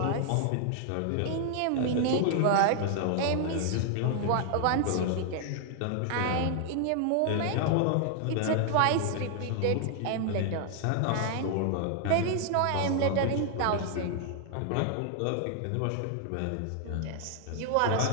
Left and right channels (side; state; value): both; different; correlation 0.00